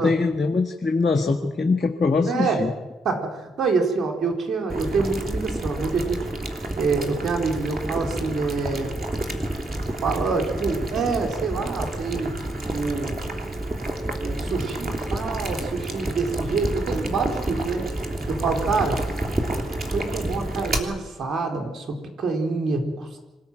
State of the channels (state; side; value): normal; both; correlation 0.75